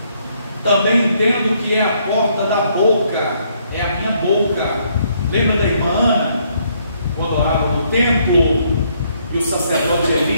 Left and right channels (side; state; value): both; inverted; correlation -0.70